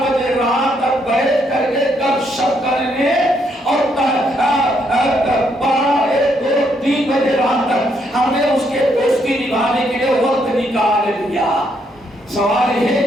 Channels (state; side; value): normal; both; correlation 0.74